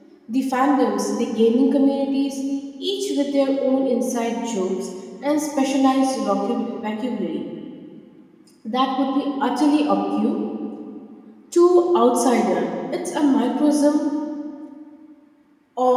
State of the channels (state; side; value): identical; both; correlation 1.00